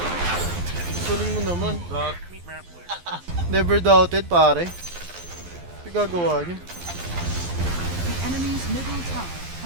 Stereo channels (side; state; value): left; late; 12 ms